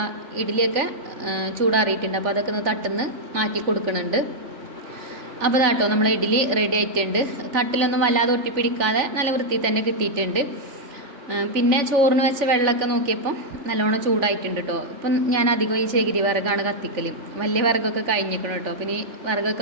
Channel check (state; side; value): late; left; 3.4 ms